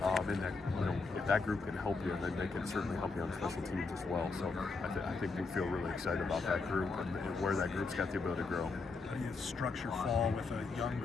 and that, you know, if that group can help you, then they can certainly help you on special teams as well. So I think we feel really excited about that group and where that group's got the ability to grow. How do you structure fall with a young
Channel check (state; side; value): quieter; right; 4.1 dB